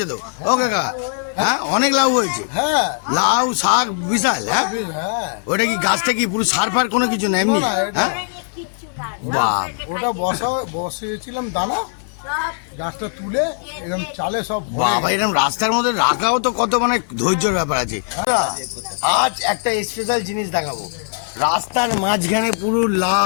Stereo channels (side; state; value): right; silent; 58 dB below the other